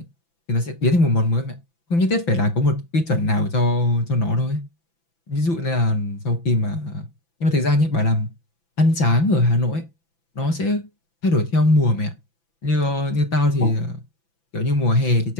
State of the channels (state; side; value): late; right; 5.9 ms